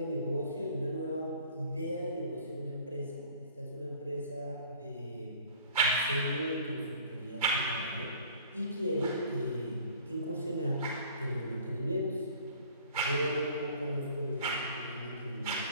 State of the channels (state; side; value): inverted; both; correlation -0.50